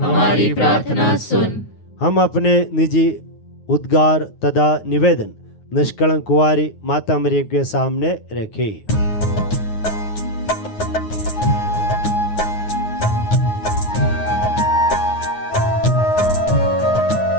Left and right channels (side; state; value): right; late; 9.5 ms